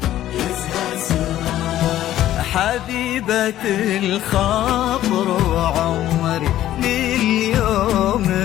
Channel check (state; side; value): quieter; right; 13.1 dB